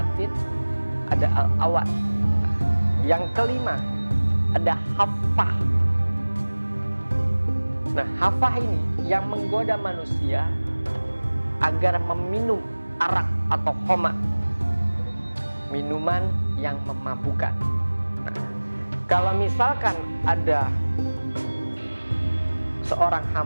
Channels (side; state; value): both; inverted; correlation -1.00